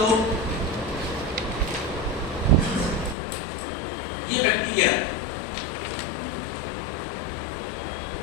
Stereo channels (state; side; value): drops out; right; at 3.2 s